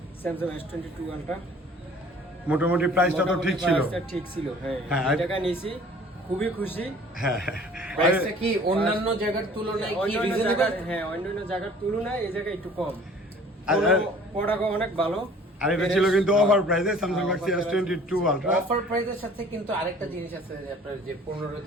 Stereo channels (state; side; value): normal; both; correlation 0.51